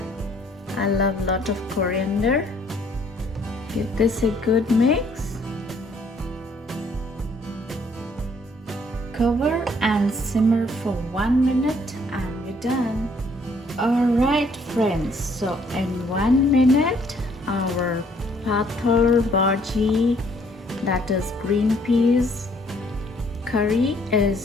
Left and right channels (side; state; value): both; normal; correlation 0.64